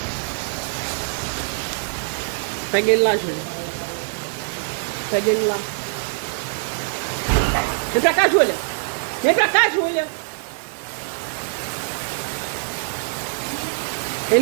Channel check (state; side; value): silent; left; digital silence